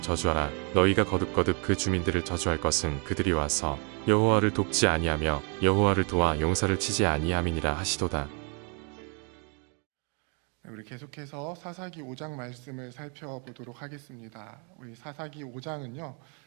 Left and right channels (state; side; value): quieter; left; 37.7 dB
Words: 너희가 거듭거듭 그 주민들을 저주할 것은 그들이 와서 여호와를 돕지 아니하며 여호와를 도와 용사를 치지 아니함이니라 하시도다. 우리 계속해서 사사기 5장 말씀을 살펴보도록 하겠습니다. 우리 사사기 5장은요